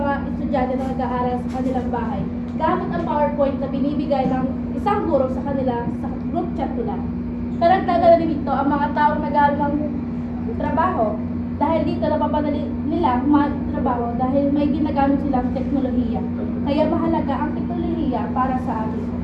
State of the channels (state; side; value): identical; both; correlation 1.00